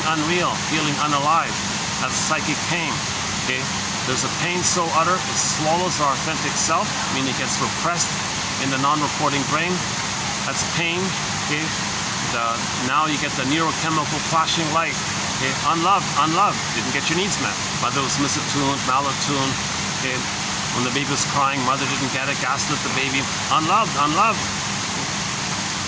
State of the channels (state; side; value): identical; both; correlation 1.00